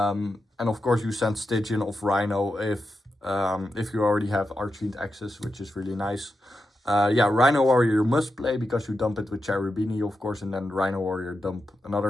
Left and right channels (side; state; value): both; normal; correlation 0.88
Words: of course, you send Stygian of Rhino if you already have Archfiend access, which is really nice. Yeah, Rhino Warrior you must play because you dump it with Cherubini, of course, and then Rhino Warrior dump